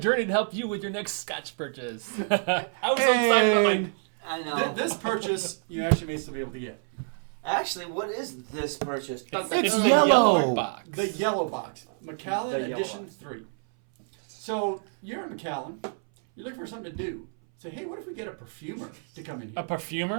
to help you with your next Scotch purchase. I was so excited about my... I know. This purchase you actually may still be able to get. Actually, what is this purchase? It's yellow. box. The yellow box. Macallan The yellow Edition box. 3. So you're in Macallan. You're looking for something to do. Say, hey, what if we get a perfumer to come in A here?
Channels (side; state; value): left; silent; 59 dB below the other